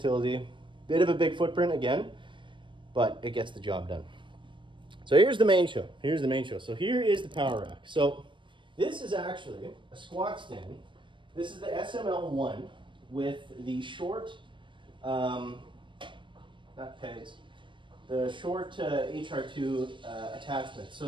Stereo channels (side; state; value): left; late; 0.24 ms